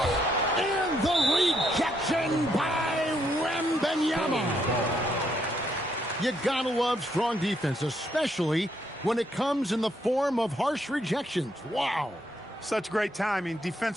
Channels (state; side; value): normal; both; correlation 0.74